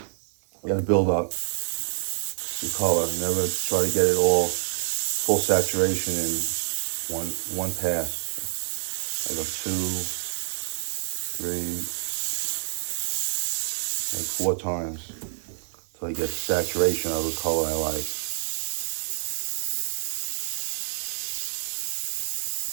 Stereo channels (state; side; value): silent; left; digital silence